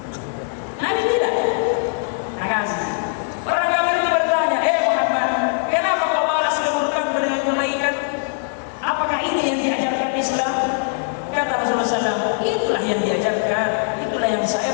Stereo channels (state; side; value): silent; right; digital silence